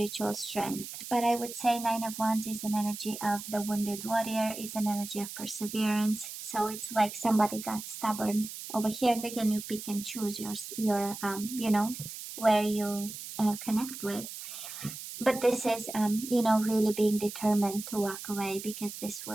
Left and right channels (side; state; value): right; noise; hiss, 10 dB below the sound